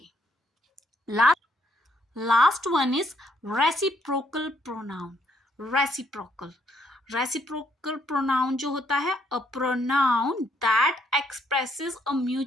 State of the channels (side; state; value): both; normal; correlation 0.71